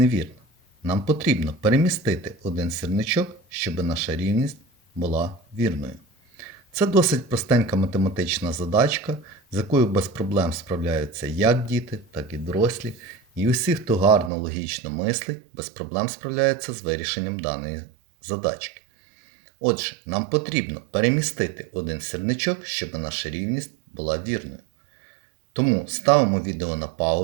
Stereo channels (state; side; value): drops out; left; at 14.3 s